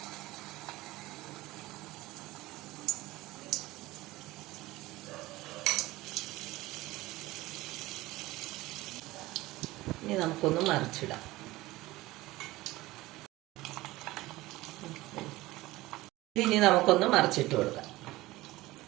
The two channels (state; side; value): quieter; left; 18.7 dB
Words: ഇനി നമുക്കൊന്ന് മറിച്ചിടാം. ഇനി നമുക്കൊന്ന് മറിച്ചിട്ട് കൊടുക്കാം.